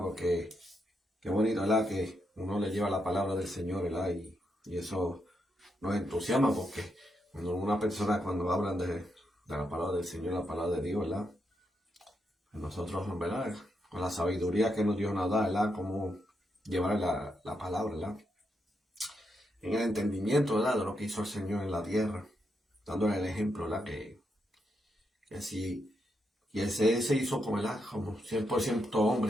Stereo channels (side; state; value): both; normal; correlation 0.82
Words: Porque qué bonito, ¿verdad?, que uno le lleva la palabra del Señor, ¿verdad? Y eso nos entusiasma, porque cuando una persona, cuando hablan de la palabra del Señor, la palabra de Dios, ¿verdad?, nosotros, ¿verdad?, con la sabiduría que nos Dios nos da, ¿verdad?, cómo llevar la palabra, ¿verdad?, en el entendimiento, ¿verdad?, de lo que hizo el Señor en la tierra, dándole el ejemplo, ¿verdad?, que si y ese se hizo como, ¿verdad?, como 100%